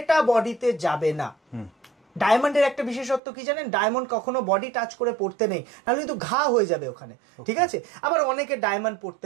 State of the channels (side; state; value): left; drops out; at 3.2 s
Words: বডিতে যাবে না। ডায়মন্ডের একটা বিশেষত্ব কি জানেন, ডায়মন্ড কখনো বডি টাচ করে পড়তে নেই, নাহলে কিন্তু ঘা হয়ে যাবে ওখানে, ঠিক আছে। আবার অনেকে ডায়মন্ড